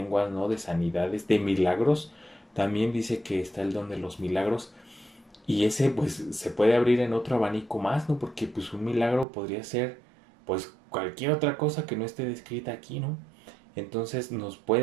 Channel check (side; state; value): left; drops out; at 9.2 s